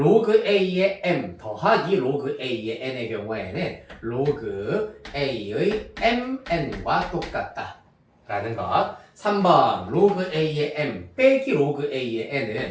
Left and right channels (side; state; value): both; identical; correlation 1.00